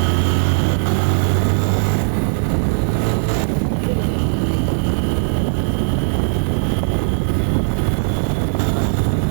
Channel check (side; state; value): left; silent; 67 dB below the other